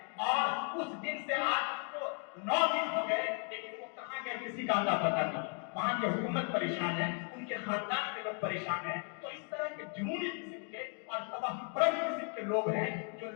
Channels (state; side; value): quieter; right; 39.9 dB